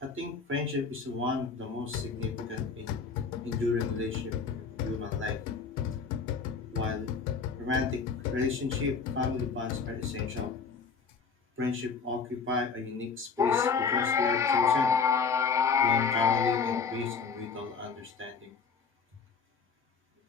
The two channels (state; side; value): quieter; right; 5.4 dB